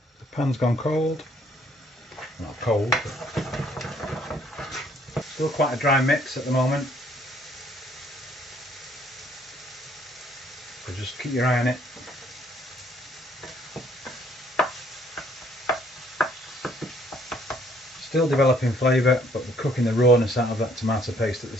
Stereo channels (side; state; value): both; normal; correlation 0.64